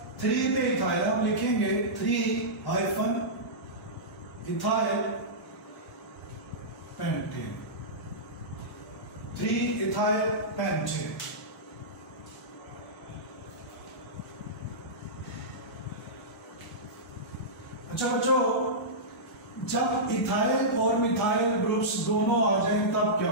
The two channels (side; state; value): both; normal; correlation -0.15